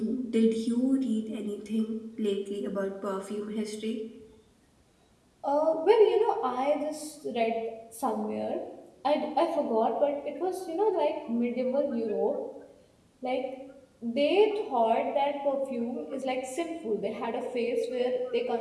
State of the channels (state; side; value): identical; both; correlation 1.00